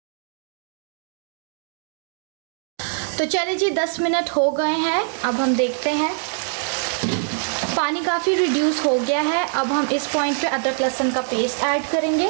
तो चलिए जी 10 मिनट हो गए हैं, अब हम देखते हैं। पानी काफ़ी रिड्यूस हो गया है। अब हम इस पॉइंट पे अदरक लहसुन का पेस्ट ऐड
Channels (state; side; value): silent; left; 63 dB below the other